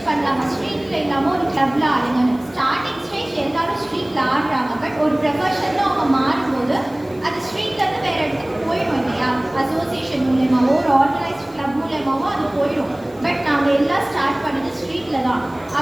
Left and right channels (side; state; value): left; noise; hiss, 28 dB below the sound